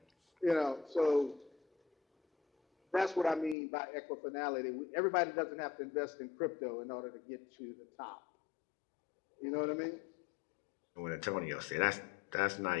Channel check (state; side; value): drops out; right; at 3.6 s